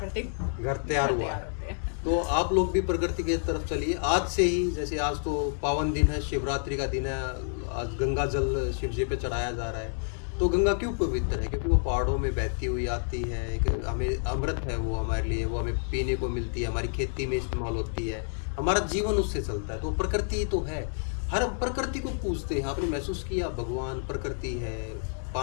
घर तैयार हुआ है। होते हैं। तो आप लोग भी प्रकृति की तरफ चलिए आज से ही। जैसे आज तो पावन दिन है, शिवरात्रि का दिन है, आज गंगा जल शिव जी पे चढ़ाया जा रहा है। तो गंगा क्यों पवित्र है? क्योंकि वो पहाड़ों में बहती हुई आती है, एक हमें अमृत है वो हमारे लिए, वो हमें पीने को मिलती है, हमारी खेती में इस्तेमाल होती है, हमारा जीवन उससे चलता है। तो प्रकृति तो है, हर प्रकृति को पूजते हैं। आपने महसूस किया, भगवान प्रकृति है,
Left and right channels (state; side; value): silent; right; 59 dB below the other